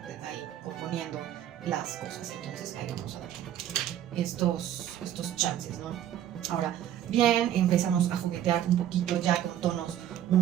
ahí componiendo las cosas. Entonces ahí vamos a dar estos chances, ¿no? Ahora bien, empezamos a juguetear un poquito ya con tonos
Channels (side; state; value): left; quieter; 11.1 dB